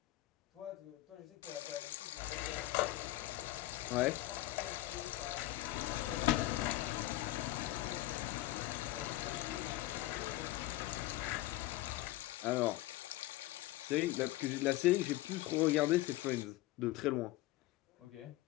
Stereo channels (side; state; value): right; quieter; 16.7 dB